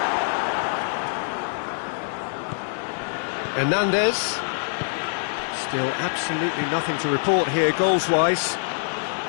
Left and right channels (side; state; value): right; silent; digital silence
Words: Hernandez. Still absolutely nothing to report here goals-wise.